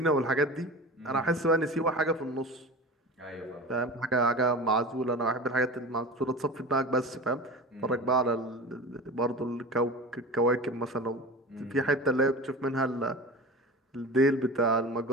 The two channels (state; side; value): normal; both; correlation 0.33